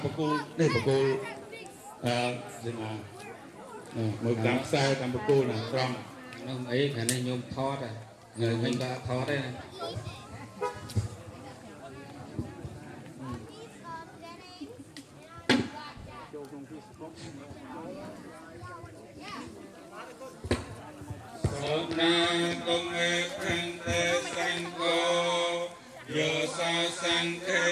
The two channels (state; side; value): identical; both; correlation 1.00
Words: បកគោនេះបកគោស្មាមើលតាមខ្សែតាមបកគោណាត្រង់នោះអីខាងនេះញោមថតហើយញោមដាក់ថតទេណាសូមណាកុំឯខាងតែសង្កោយោសោសង្ឃេ